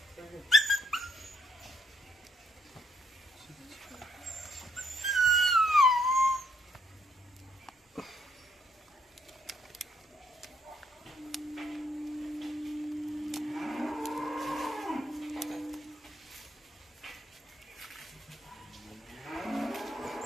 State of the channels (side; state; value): both; normal; correlation 0.72